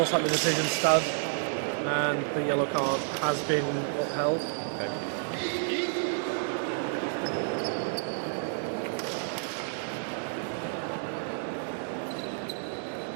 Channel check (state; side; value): silent; left; digital silence